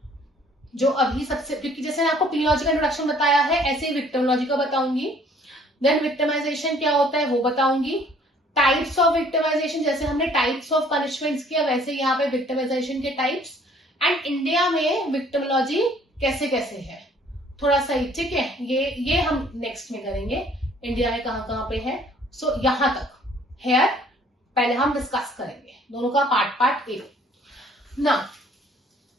जो अभी सबसे, क्योंकि जैसे आपको पेनोलॉजी का इंट्रोडक्शन बताया है, ऐसे ही विक्टिमोलॉजी का बताऊंगी. देन विक्टिमाइजेशन क्या होता है वो बताऊंगी. टाइप्स ऑफ विक्टिमाइजेशन, जैसे हमने टाइप्स ऑफ पनिशमेंट्स किया, वैसे यहाँ पे विक्टिमाइजेशन के टाइप्स, एंड इंडिया में विक्टिमोलॉजी कैसे कैसे है थोड़ा सा ही. ठीक है, ये हम नेक्स्ट में करेंगे, इंडिया में कहाँ कहाँ पे है. सो यहां तक हेयर पहले हम डिस्कस करेंगे, दोनों का पार्ट ए ना।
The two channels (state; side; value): normal; both; correlation 0.58